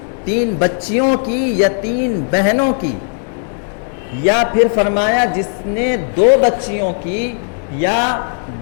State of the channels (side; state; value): right; silent; 63 dB below the other